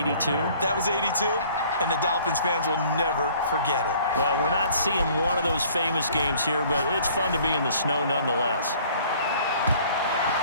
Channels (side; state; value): both; inverted; correlation -0.55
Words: That was 82, and the Dolphins fans will never forget it. Well, we're not seeing one of those famous games here, but it's fun to be in the snow nonetheless.